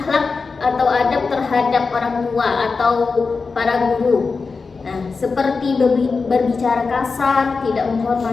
atau adab terhadap orang tua atau para guru. Nah, seperti berbicara kasar, tidak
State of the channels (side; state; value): right; quieter; 4.5 dB